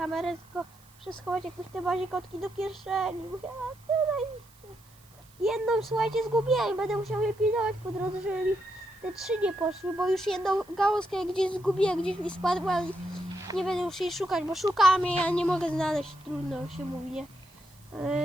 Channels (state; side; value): noise; right; hiss, 28 dB below the sound